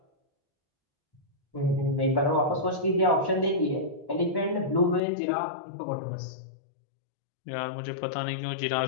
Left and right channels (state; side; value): drops out; right; at 5.0 s